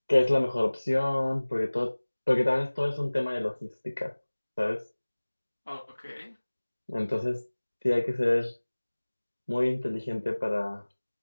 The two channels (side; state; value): both; inverted; correlation -1.00